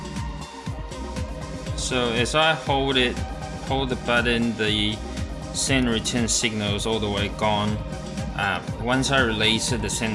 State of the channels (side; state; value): both; identical; correlation 1.00